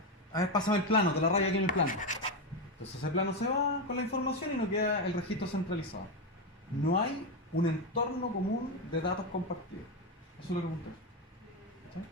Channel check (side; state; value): both; normal; correlation 0.10